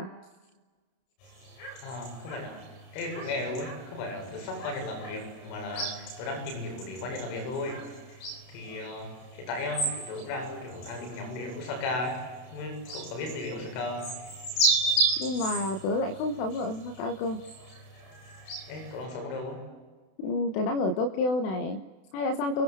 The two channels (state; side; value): late; right; 32 ms